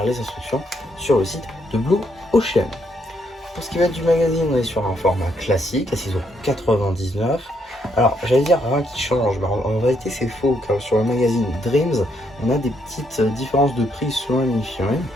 les instructions sur le site de Blue Ocean. Pour ce qui va être du magazine, on est sur un format classique à 6,99 €. Alors, j'allais dire rien qui change, mais en réalité c'est faux, car sur le magazine Dreams, on a des petites différences de prix selon la mini-figurine.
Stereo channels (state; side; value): normal; both; correlation 0.74